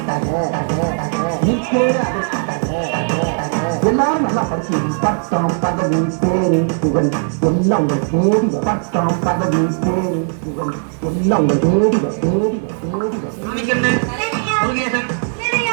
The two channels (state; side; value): silent; left; 62 dB below the other